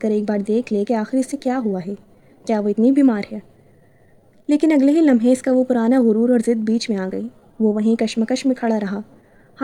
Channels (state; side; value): identical; both; correlation 1.00